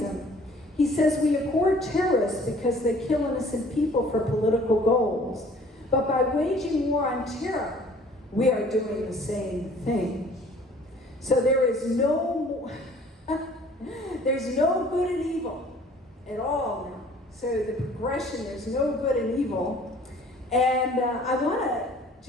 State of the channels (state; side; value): normal; both; correlation 0.53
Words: He says we abhor terrorists because they kill innocent people for political goals. But by waging war on terror, we are doing the same thing. So there is there's no good and evil at all now. So the progression, there's no good and evil. And I want to